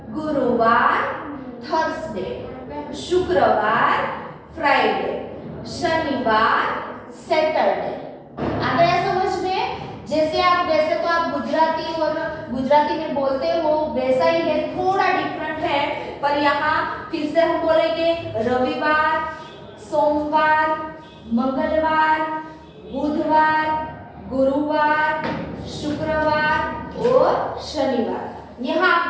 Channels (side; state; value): both; identical; correlation 1.00